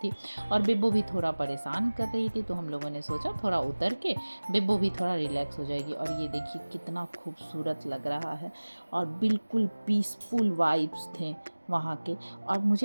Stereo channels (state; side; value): inverted; both; correlation -1.00